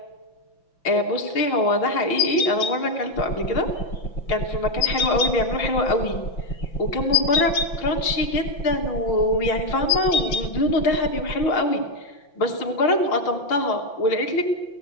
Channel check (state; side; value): late; right; 5.9 ms